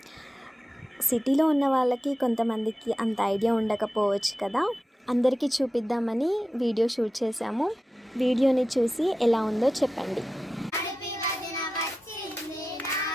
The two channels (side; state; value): both; normal; correlation 0.93